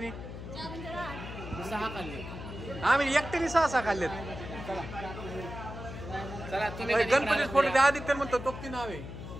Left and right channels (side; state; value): left; noise; hum, 10 dB below the sound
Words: 4 म्हणजे 8. 6 खाल्ले. आम्ही एकट्याने 6 खाल्लेत. चला तुम्ही गणपती फोटो आदित्य म्हणतो तो ती नाव आहे.